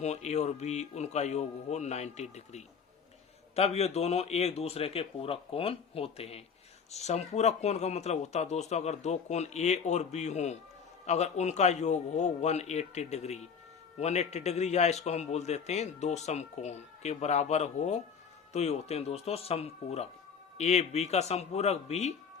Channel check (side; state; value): right; quieter; 6.4 dB